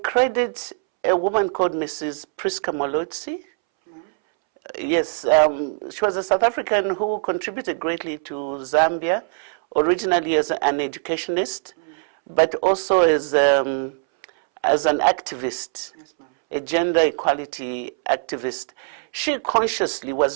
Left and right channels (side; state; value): left; silent; 64 dB below the other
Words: credit a woman called Mrs. Priska Molotsi. Yes, she was a South African who contributed greatly to Zambia, originally as an educationist, but also as as an activist, Yes, ma'am. a gender equality activist, she consciously